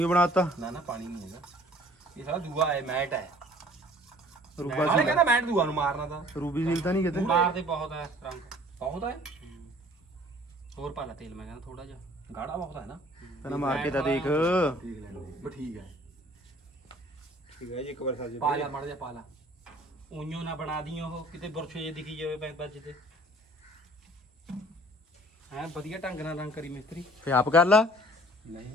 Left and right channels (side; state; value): both; normal; correlation 0.53